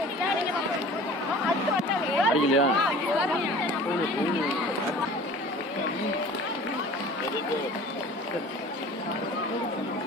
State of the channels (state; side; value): normal; both; correlation 0.44